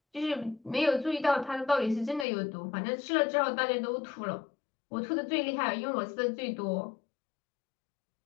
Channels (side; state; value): right; drops out; at 2.2 s